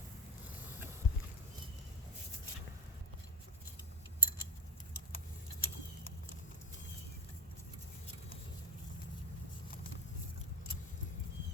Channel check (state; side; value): normal; both; correlation 0.19